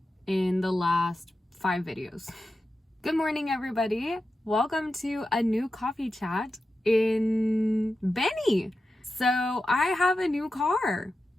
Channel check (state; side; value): normal; both; correlation 0.91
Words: in the last 5 videos? Good morning, everybody. Welcome to a new coffee chat in Benny. So I have a new car.